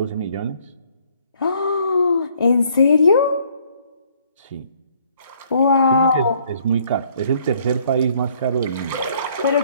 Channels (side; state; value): both; inverted; correlation -0.63